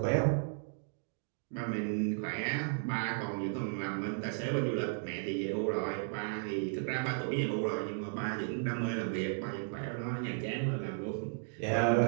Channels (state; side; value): silent; left; digital silence